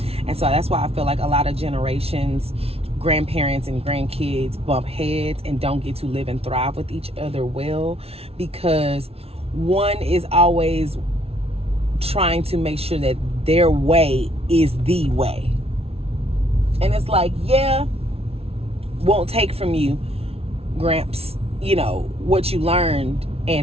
And so that's why I feel like a lot of generations, grandparents and grandkids bump heads and don't get to live and thrive with each other well, because one is always trying to make sure that their way is the way. And it's like, won't take from you, Gramps, what you learned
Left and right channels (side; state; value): left; late; 0.29 ms